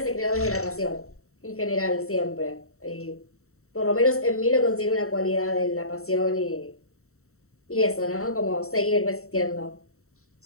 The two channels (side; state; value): right; late; 0.64 ms